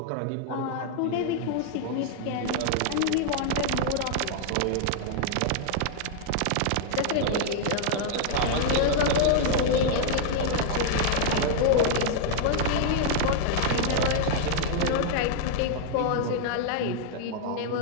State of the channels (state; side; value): different; both; correlation 0.00